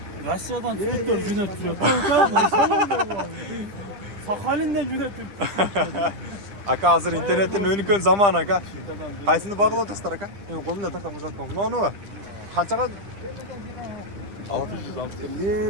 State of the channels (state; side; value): late; left; 10 ms